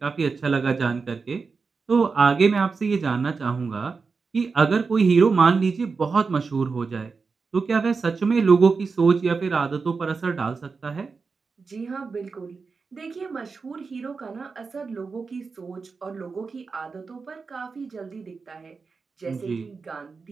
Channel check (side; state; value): left; quieter; 4.8 dB